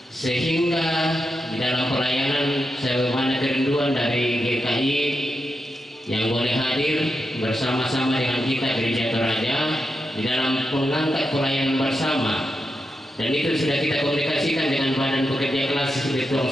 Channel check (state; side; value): normal; both; correlation 0.87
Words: sehingga di dalam pelayanan sebagaimana kerinduan dari GKI yang boleh hadir bersama-sama dengan kita Gereja Toraja di dalam mengangkat pelayanan bersama, dan itu sudah kita komunikasikan dengan Badan Pekerja Kelas di